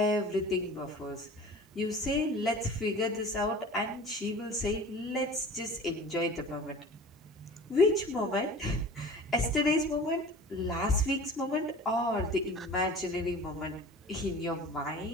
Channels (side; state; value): both; normal; correlation 0.40